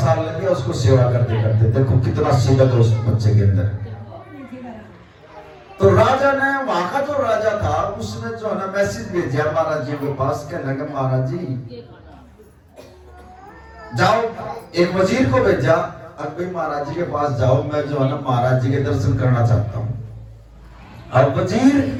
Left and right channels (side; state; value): both; identical; correlation 1.00